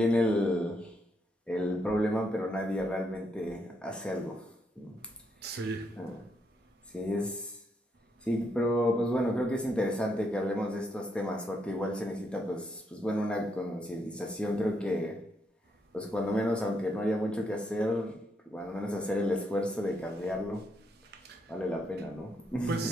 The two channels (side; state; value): both; normal; correlation 0.77